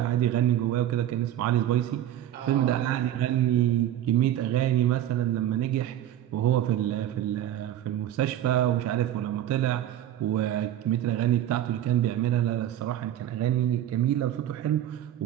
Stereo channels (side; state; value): left; quieter; 12.0 dB